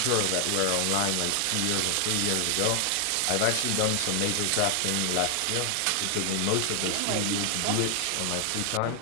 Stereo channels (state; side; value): different; both; correlation 0.00